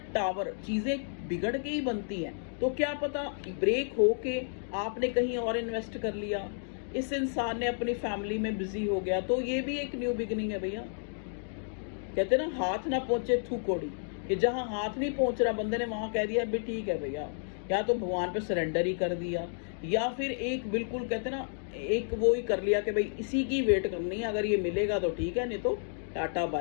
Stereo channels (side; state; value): right; silent; digital silence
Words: टावर चीज़ें बिगड़ के ही बनती हैं, तो क्या पता ब्रेक हो के आपने कहीं और इन्वेस्ट कर लिया, इस इंसान ने अपनी फैमिली में बिजी हो गया, तो ये भी एक न्यू बिगिनिंग है भैया। कहते हैं ना, हाथ ना पहुंचे थू कोड़ी, कि जहां हाथ नहीं पहुंच रहा बंदे ने वहां कह दिया भी ठीक है भैया, या तो भगवान पे सरेंडर ही कर दिया, या फिर एक बिल्कुल कहते हैं ना, एक वो ही कर लिया कि भाई इसी की वेट करनी है, अगर ये मिलेगा तो ठीक है, नहीं तो टाटा